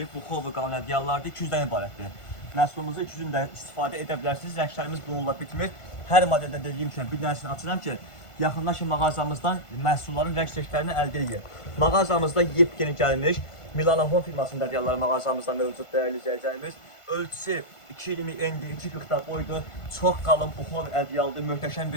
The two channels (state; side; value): late; right; 1.5 ms